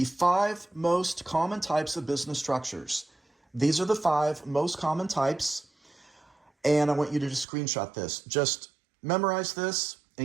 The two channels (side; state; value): left; drops out; at 7.5 s